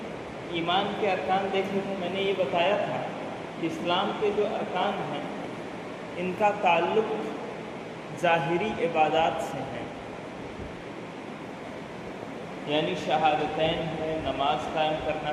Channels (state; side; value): identical; both; correlation 1.00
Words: ایمان کے ارکان دیکھے تھے۔ میں نے یہ بتایا تھا کہ اسلام کے جو ارکان ہیں ان کا تعلق ظاہری عبادات سے ہے، یعنی شہادتین ہے، نماز قائم